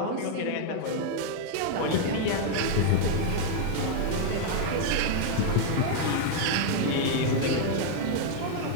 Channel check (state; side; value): different; both; correlation 0.00